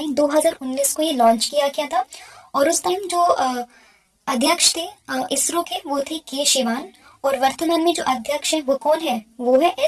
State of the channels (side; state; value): both; identical; correlation 1.00